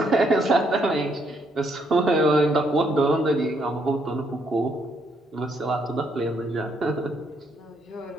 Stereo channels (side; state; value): both; normal; correlation 0.73